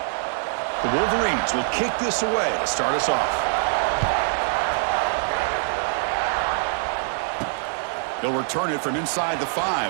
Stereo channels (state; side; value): silent; left; 58 dB below the other